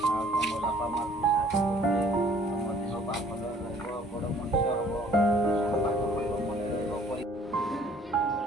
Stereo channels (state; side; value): normal; both; correlation 0.57